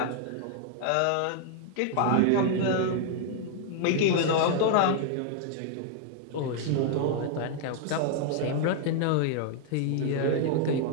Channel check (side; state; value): both; different; correlation 0.00